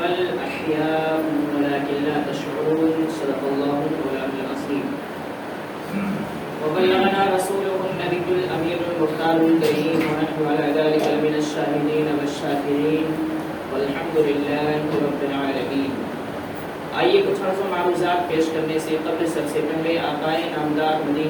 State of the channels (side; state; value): both; identical; correlation 1.00